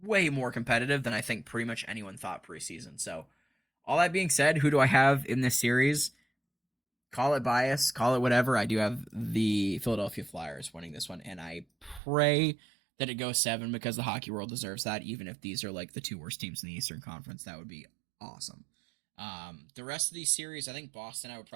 way more competitive than I think pretty much anyone thought preseason. So, all that being said, who do I have in this series? Call it bias, call it whatever. I do have the Philadelphia Flyers winning this one, and I pray that it goes 7 because the hockey world deserves that. Even if these are like the 2 worst teams in the Eastern Conference, that would be awesome. The rest of these series, I think Boston I would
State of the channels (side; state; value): left; drops out; at 12.0 s